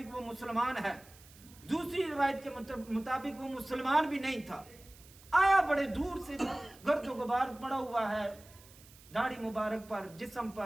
وہ مسلمان ہے دوسری روایت کے مطابق وہ مسلمان بھی نہیں تھا آیا بڑے دور سے گرد و غبار پڑا ہوا ہے داڑھی مبارک پر جسم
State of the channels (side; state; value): right; noise; hiss, 23 dB below the sound